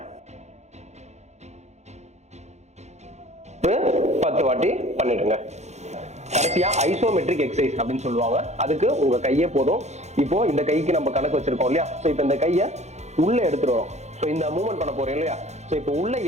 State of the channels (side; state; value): left; late; 0.33 ms